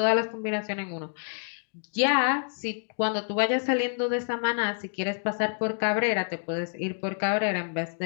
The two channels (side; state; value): right; silent; digital silence